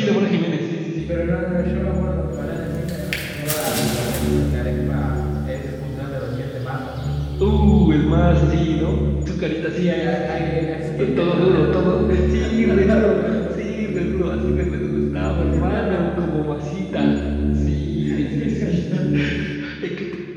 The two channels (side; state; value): both; identical; correlation 1.00